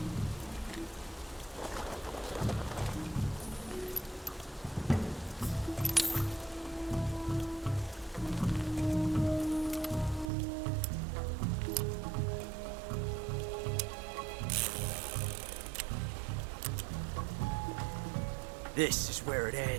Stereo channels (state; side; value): drops out; left; at 10.3 s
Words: This is where it